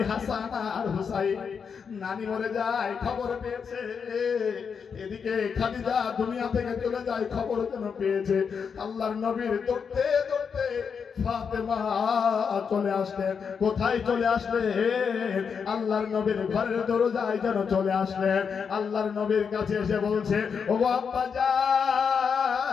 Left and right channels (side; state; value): right; quieter; 6.3 dB